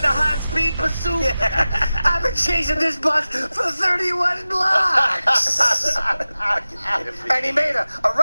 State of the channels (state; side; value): inverted; both; correlation -0.96